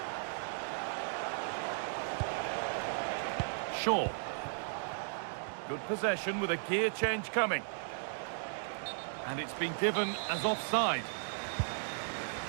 Shaw. Good possession with a gear change coming. And it's been given as offside.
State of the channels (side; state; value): left; silent; digital silence